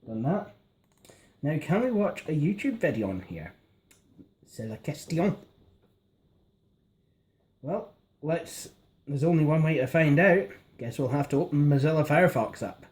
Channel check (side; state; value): both; identical; correlation 1.00